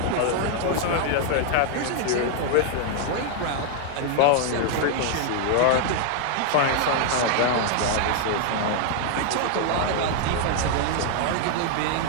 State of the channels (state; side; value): different; both; correlation 0.00